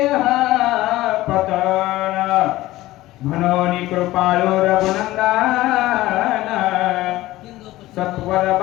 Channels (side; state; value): right; quieter; 17.0 dB